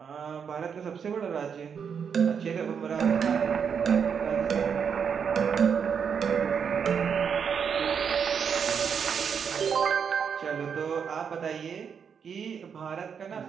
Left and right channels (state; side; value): quieter; left; 6.9 dB